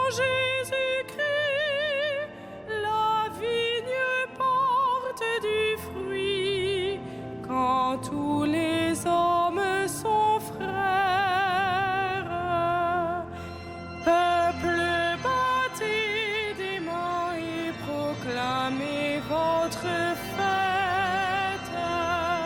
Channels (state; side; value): identical; both; correlation 1.00